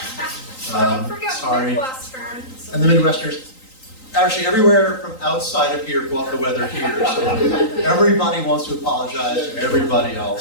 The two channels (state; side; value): late; right; 3.9 ms